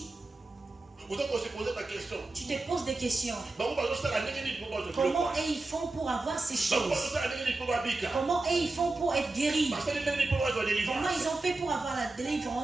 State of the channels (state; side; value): quieter; left; 3.2 dB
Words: Tu te poses des questions. Comment ils font pour avoir ces choses? Comment ils font pour être guéris? Comment ils ont fait pour avoir la